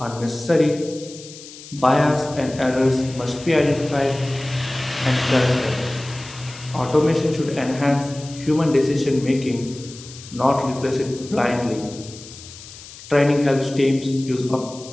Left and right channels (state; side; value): noise; left; hiss, 17 dB below the sound